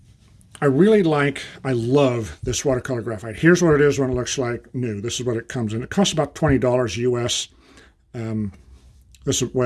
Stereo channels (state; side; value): identical; both; correlation 1.00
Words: I love this watercolor graphite. Here's what it is when it looks like new. This is what it comes in. It costs about $20 US. This is,